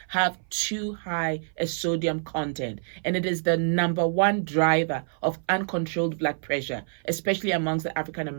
have too high a sodium content, and it is the number one driver of uncontrolled blood pressure, especially amongst the African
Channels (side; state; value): left; silent; 57 dB below the other